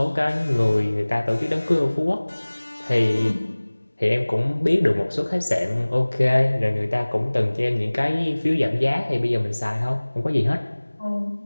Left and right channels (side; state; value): both; inverted; correlation -1.00